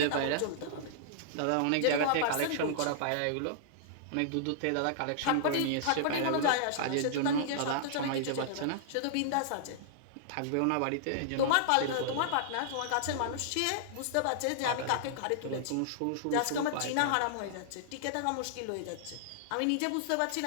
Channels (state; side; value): different; both; correlation -0.01